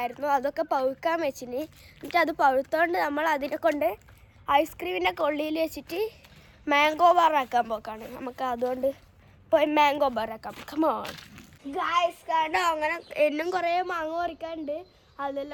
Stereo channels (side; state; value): both; identical; correlation 1.00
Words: അതൊക്കെ പഴുക്കാൻ വെച്ചിന്. എന്നിട്ട് അത് പഴുത്തോണ്ട് നമ്മൾ അതിനെ കൊണ്ട് ഐസ്ക്രീമിൻ്റെ കൊള്ളിയിൽ വെച്ചിട്ട് മാംഗോ ബാറാക്കാൻ പോക്കാണ്. നമുക്ക് അതുകൊണ്ട് പോയി മാംഗോ ബാറാക്കാം. Come on guys. കാരണം അങ്ങനെ എന്നും കുറേ മാങ്ങ പറിക്കാനുണ്ട്.